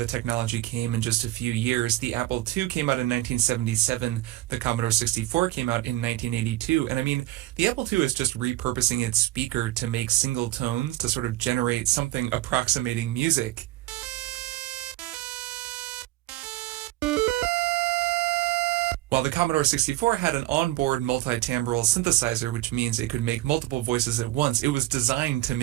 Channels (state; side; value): quieter; left; 16.2 dB